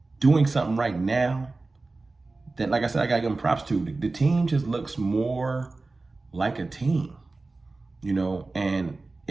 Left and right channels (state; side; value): quieter; left; 3.4 dB